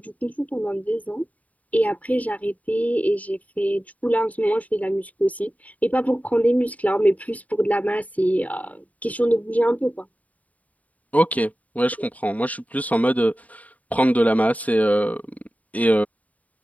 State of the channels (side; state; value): right; late; 0.072 ms